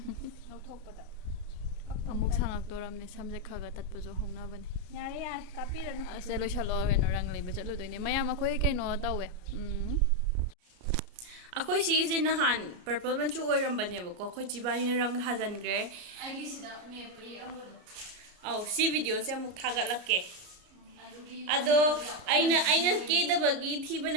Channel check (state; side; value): late; left; 33 ms